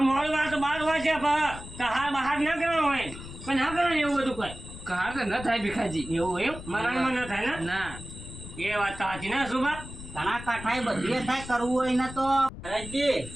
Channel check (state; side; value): noise; left; rumble, 13 dB below the sound